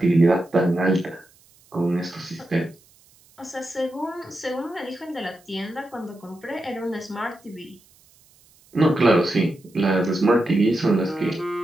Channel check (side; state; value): right; noise; hiss, 30 dB below the sound